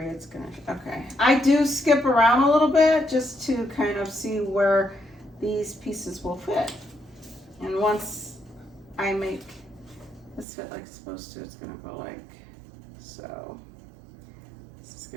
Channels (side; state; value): left; drops out; at 10.5 s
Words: it's gonna, okay. I do skip around a little bit just to kind of see where these pieces will fit. And once I make this fit like it's supposed to, it's gonna go like so. This is